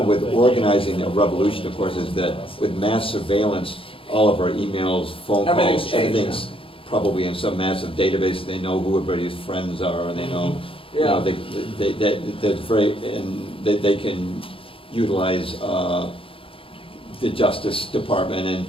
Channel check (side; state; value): right; late; 0.26 ms